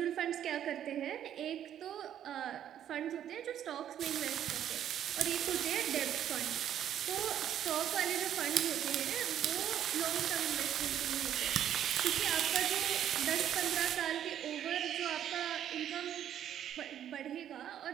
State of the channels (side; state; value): left; quieter; 10.4 dB